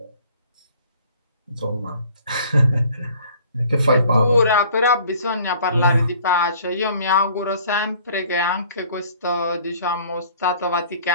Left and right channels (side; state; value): both; inverted; correlation -0.54